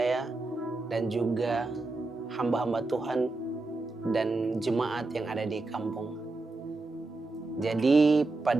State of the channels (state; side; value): quieter; left; 3.2 dB